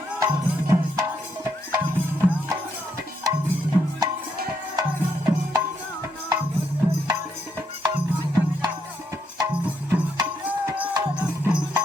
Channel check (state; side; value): normal; both; correlation 0.77